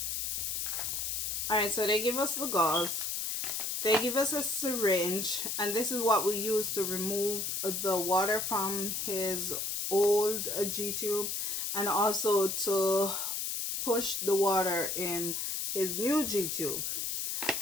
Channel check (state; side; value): noise; left; hiss, 1 dB below the sound